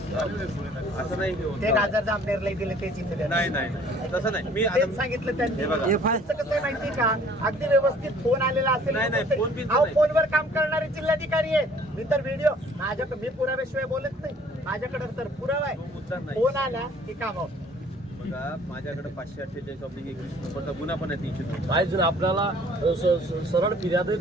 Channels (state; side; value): normal; both; correlation 0.55